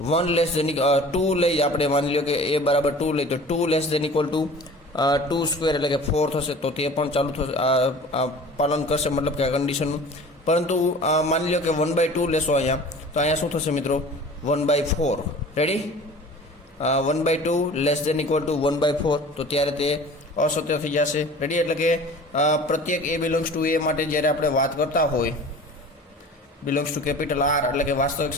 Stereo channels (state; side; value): normal; both; correlation 0.42